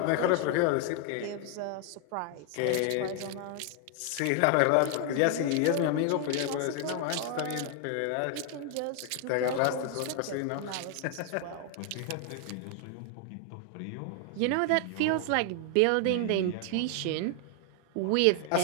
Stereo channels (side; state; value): both; different; correlation 0.00